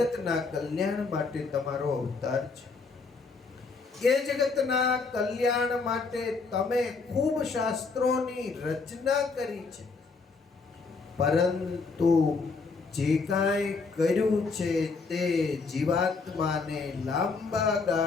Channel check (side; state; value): right; quieter; 4.4 dB